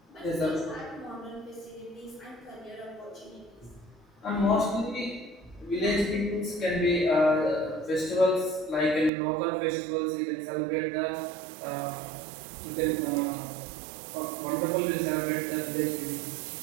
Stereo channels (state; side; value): drops out; left; at 9.1 s